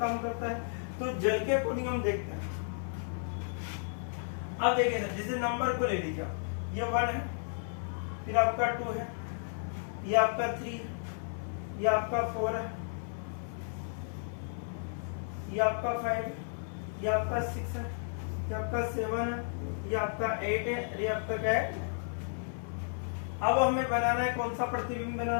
काम करता है। तो जल के अकॉर्डिंग हम देखते हैं। अब देखिए सर, जैसे नंबर को ले लीजिए, ये 1 है, फिर आपका 2 है, ये आपका 3 है, ये आपका 4 है, ये आपका 5 है, ये आपका 6 है, ये आपका 7 है, ये आपका 8 है, ये आपका क्या है। अब हमें बनाना है कौन सा प्रतिबिंब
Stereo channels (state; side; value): silent; right; 56 dB below the other